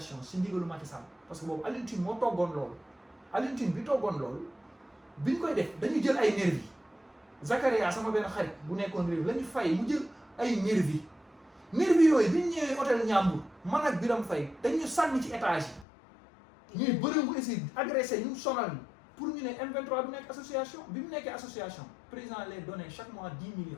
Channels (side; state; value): right; drops out; at 15.9 s